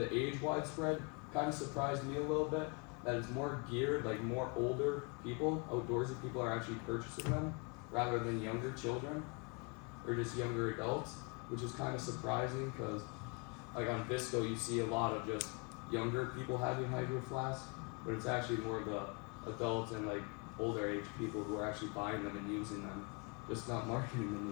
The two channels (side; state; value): right; quieter; 32.6 dB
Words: age widespread kind of surprised me a little bit that it's more geared, like more older people, outdoorsy people are actually purchasing them rather than younger children or just younger adults, which is kind of surprising because like on Visco, you see a lot of just younger people having Hydro Flask, but it's actually more of the adults and like older age people who are actually buying them and using them, just not marketing them